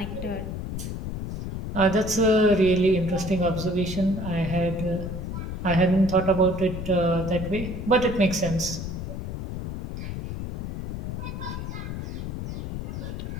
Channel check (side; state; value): left; noise; rumble, 6 dB below the sound